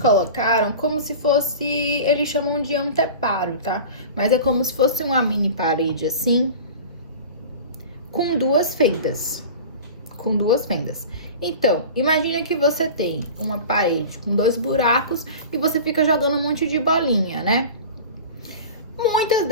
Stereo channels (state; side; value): inverted; both; correlation -0.36